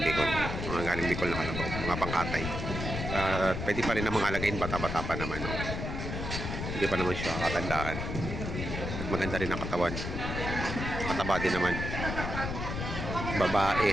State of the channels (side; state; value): left; noise; rumble, 4 dB below the sound